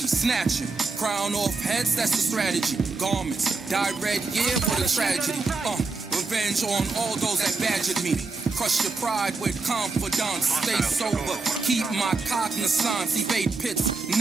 snatching, crown off heads, that's the strategy, garments, dyed red, yeah, what a tragedy, revenge on all those that badgered me, crush your pride with confidence, stay sober, keep my cognizance, evade pits,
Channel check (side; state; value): left; quieter; 3.9 dB